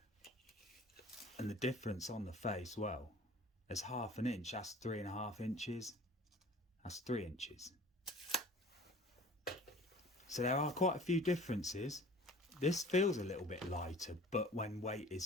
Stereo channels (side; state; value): both; normal; correlation 0.46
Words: And the difference on the face, well, there's half an inch, that's 3.5 inches, that's 3 inches. So there are quite a few differences. This feels a little bit lighter, but when weight is